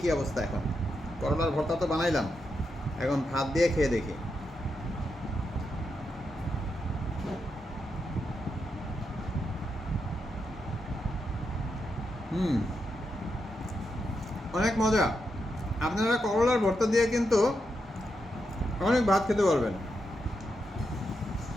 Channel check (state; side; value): normal; both; correlation 0.84